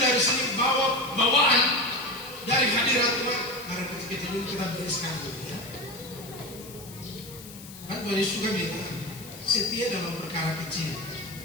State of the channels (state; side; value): noise; left; hiss, 16 dB below the sound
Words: sini bawa bawaan dari hadirat Tuhan. Karena kecil-kecil ini kita bereskan dulu ya. Kan Tuhan Yesus juga bilang, setia dalam perkara kecil.